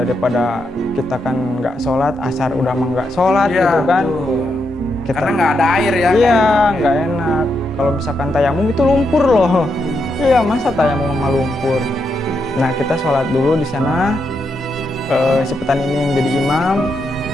kita kan nggak sholat, asar udah mah nggak sholat gitu kan. Kita, karena nggak ada air ya. Iya, nggak enak. Kalau misalkan tayamum itu lumpur loh. Iya, masa tayamum sama lumpur. Nah kita sholat dulu di sana. Si petani ini yang jadi imam.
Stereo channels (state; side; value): normal; both; correlation 0.82